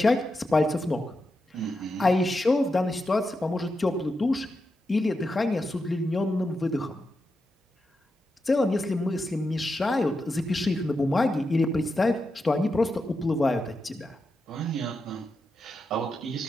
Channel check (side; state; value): both; normal; correlation 0.87